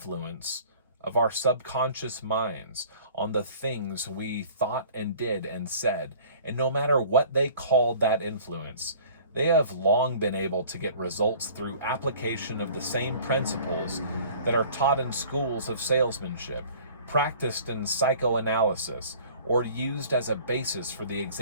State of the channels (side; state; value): both; inverted; correlation -0.48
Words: of our subconscious minds on the things we thought and did and said, and no matter what they called that influence, they have long been able to get results through application of the same principles that are taught in schools of salesmanship, practiced in psychoanalysis, or used as a basis for the